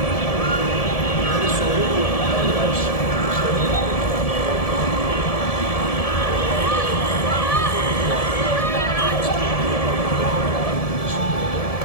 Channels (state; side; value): late; right; 1.7 ms